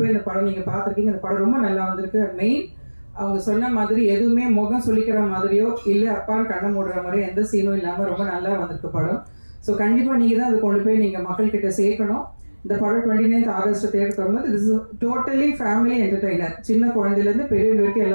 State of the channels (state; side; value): inverted; both; correlation -1.00